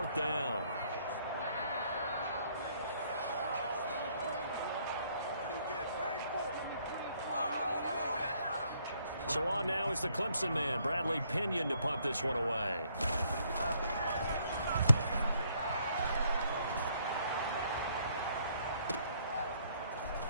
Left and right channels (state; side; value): inverted; both; correlation -0.68